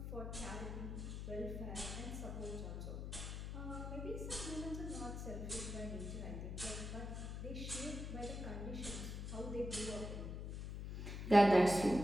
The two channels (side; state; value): left; noise; hum, 5 dB below the sound